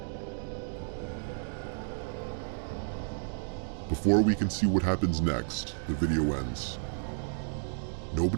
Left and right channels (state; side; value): silent; left; digital silence